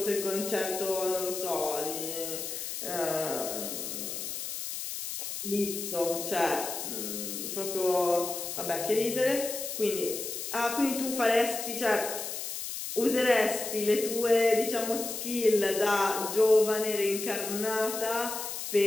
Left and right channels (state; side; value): noise; left; hiss, 6 dB below the sound